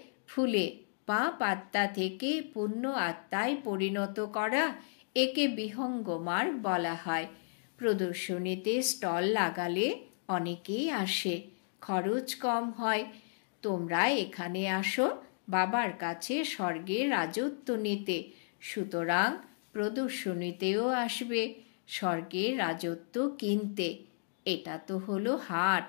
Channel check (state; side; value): silent; right; digital silence